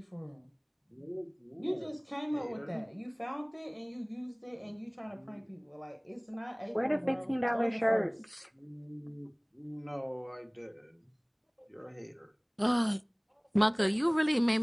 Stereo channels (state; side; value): identical; both; correlation 1.00